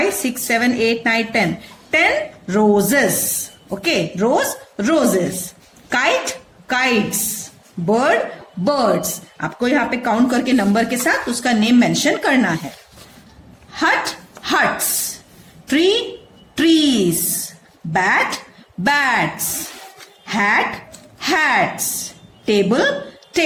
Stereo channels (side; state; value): both; identical; correlation 1.00